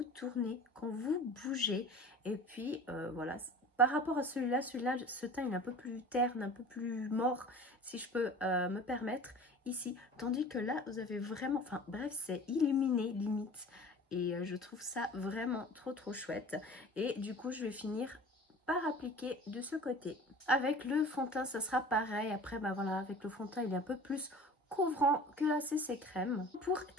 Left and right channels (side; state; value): both; normal; correlation 0.42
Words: tournez, quand vous bougez. Et puis voilà, par rapport à celui-là, ce teint il est un peu plus terne, un peu plus mort, si je peux me permettre, ici. Tandis que là, vous avez vraiment, enfin bref, c'est illuminé limite. Et je trouve ça vraiment trop chouette. Et du coup, je vais finir par appliquer de ce côté. Avec le fond de teint, ça sera pareil. Après, bah voilà, avec le fond de teint, il est un peu plus couvrant que la CC crème. Pour